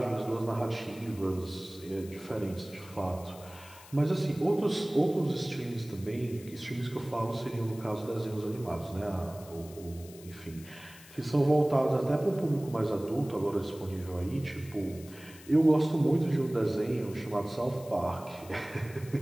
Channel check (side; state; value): left; noise; hiss, 20 dB below the sound